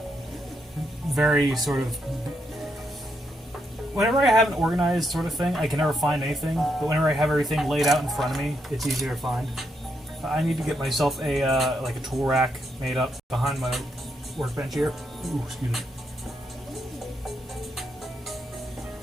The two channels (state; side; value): normal; both; correlation 0.80